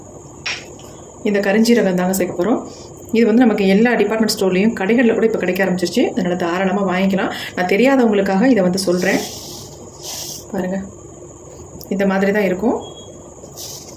இந்த கரிஞ்சீரகம் தாங்க சேர்க்க போகிறோம். இது வந்து நமக்கு எல்லா டிபார்ட்மெண்ட் ஸ்டோர்லேயும் கடைகளில் கூட இப்போ கிடைக்க ஆரம்பிச்சிருச்சு. அதனால் தாராளமாக வாங்கிக்கலாம். நான் தெரியாதவங்களுக்காக இதை வந்து சொல்கிறேன். பாருங்கள், இந்த மாதிரி தான் இருக்கும்.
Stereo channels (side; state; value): both; identical; correlation 1.00